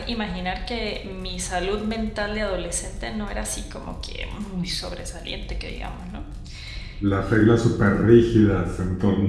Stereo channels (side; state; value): both; identical; correlation 1.00